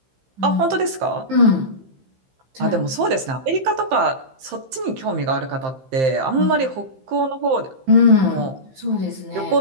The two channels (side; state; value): left; late; 15 ms